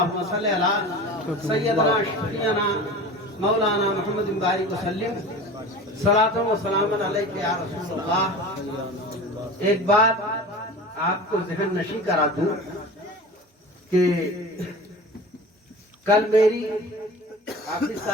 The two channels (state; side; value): normal; both; correlation 0.36